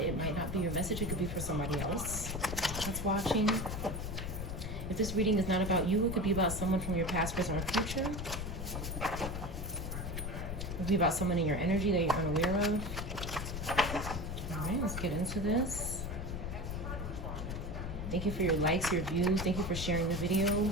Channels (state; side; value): noise; left; rumble, 5 dB below the sound